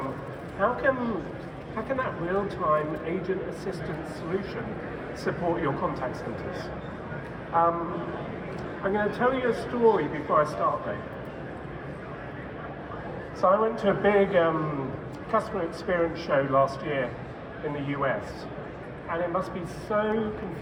how can that real-time agent assistance solution support your contact centers. I'm going to tell you a story before I start though. So I went to a big customer experience show last year in the US, and it must be so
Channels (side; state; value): both; identical; correlation 1.00